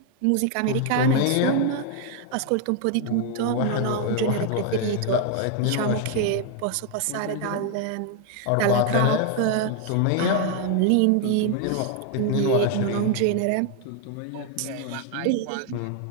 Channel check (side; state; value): both; different; correlation 0.00